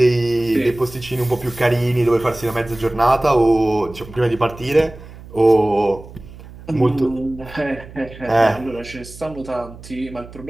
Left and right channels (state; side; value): noise; right; hum, 17 dB below the sound